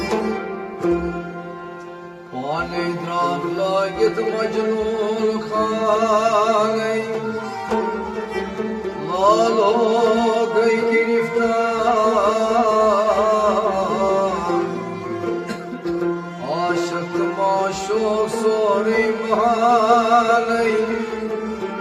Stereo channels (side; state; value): both; identical; correlation 1.00